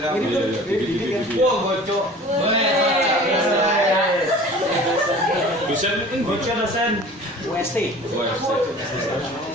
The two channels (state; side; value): normal; both; correlation 0.43